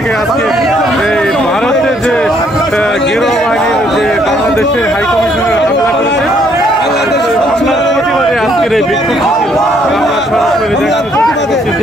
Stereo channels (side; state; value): both; normal; correlation 0.68